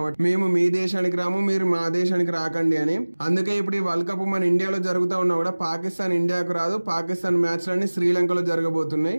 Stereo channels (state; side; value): inverted; both; correlation -1.00